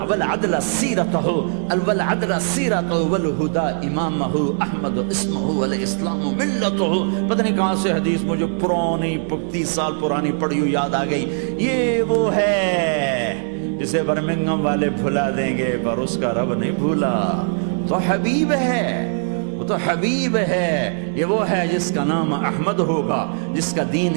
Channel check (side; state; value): left; silent; digital silence